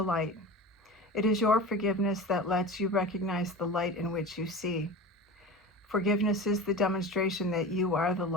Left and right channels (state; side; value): normal; both; correlation 0.32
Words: light. It is your forgiveness that lets you recognize the light in which you see. Forgiveness is the demonstration that you are the